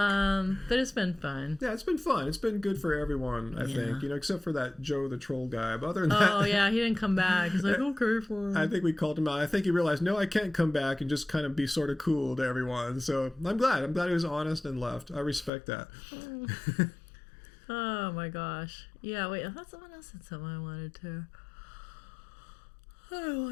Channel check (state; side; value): drops out; right; at 15.5 s